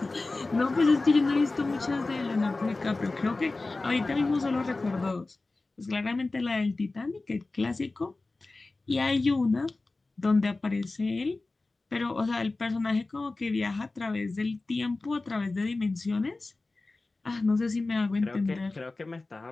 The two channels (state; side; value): quieter; right; 3.3 dB